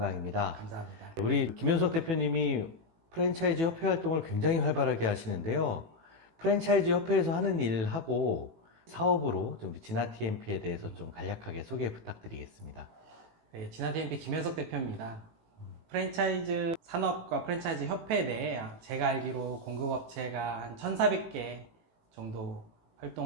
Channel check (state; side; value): late; left; 18 ms